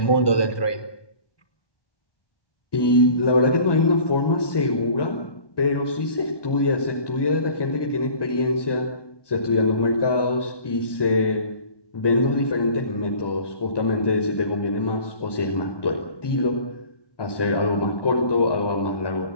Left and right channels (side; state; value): right; late; 1.2 ms